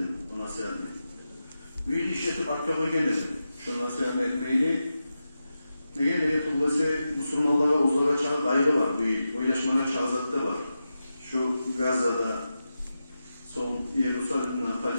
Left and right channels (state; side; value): inverted; both; correlation -0.91